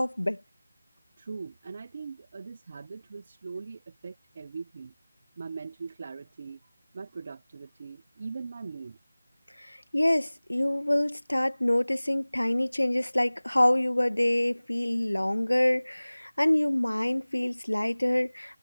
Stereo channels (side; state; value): both; inverted; correlation -1.00